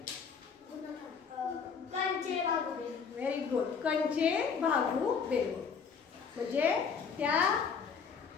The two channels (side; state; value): right; quieter; 6.1 dB